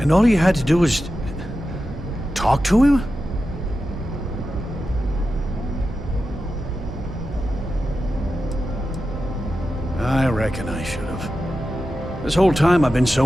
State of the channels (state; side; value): normal; both; correlation 0.91